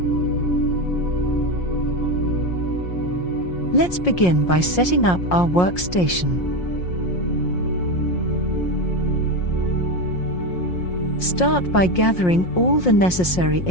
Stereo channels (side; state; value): right; late; 5.6 ms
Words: Let's begin by setting up our workstation. Start by gathering all the necessary